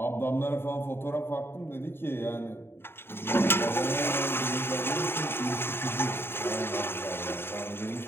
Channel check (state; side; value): late; right; 0.11 ms